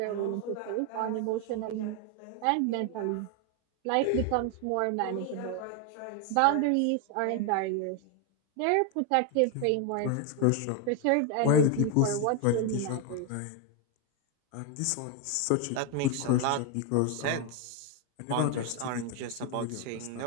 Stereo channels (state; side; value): different; both; correlation 0.01